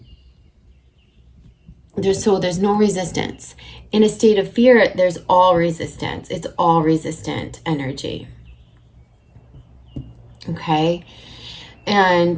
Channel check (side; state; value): both; identical; correlation 1.00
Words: There's no resistance. In a state of fear, there's all resistance. It's all resistant energy. Okay?